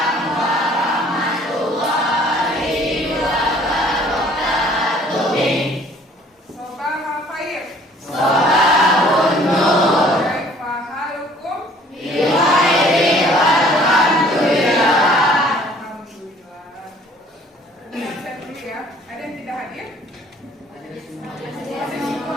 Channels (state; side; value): normal; both; correlation 0.55